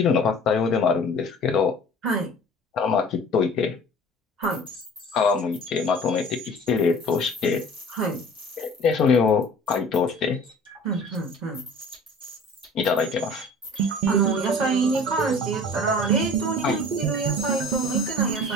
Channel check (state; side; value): normal; both; correlation 0.45